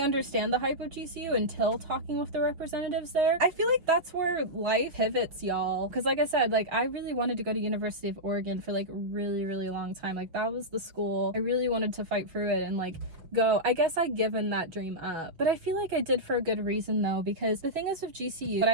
understand the hype of GCU until talking with the representatives there. I feel like that's where life pivots, y'all. Because like I said, like I really wanted to go to University of Oregon for like a really, really long time. Like that was the school I really wanted to fight through it and like go. I guess I'd given that dream up, but I feel like I did for a good reason though, because the thing is with GCU, what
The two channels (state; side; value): late; left; 5.9 ms